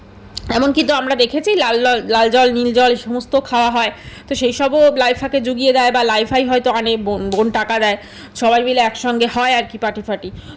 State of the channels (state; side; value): identical; both; correlation 1.00